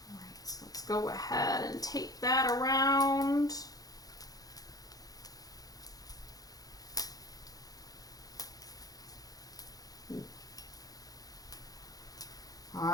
right, so let's go ahead and tape that around. All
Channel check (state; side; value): late; right; 0.18 ms